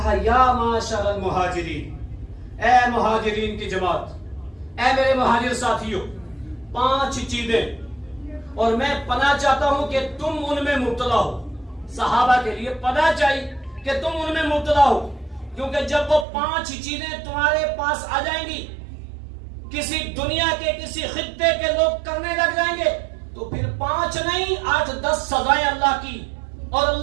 یا معاشر المہاجرین، اے مہاجرین کی جماعت، اے میرے مہاجر ساتھیوں، 5 چیزیں اور میں پناہ چاہتا ہوں کہ تم ان میں مبتلا ہو۔ صحابہ کے لیے پناہ چاہیے کہ تم ان میں مبتلا ہو، کیونکہ جب وہ 5 چیزیں تمہارے پاس آ جائیں گی، کسی دنیا کے کسی خطے کے لوگ کرنے لگ جائیں گے، تو پھر 5 نہیں 8-10 سزائیں اللہ کی اور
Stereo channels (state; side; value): drops out; left; at 16.2 s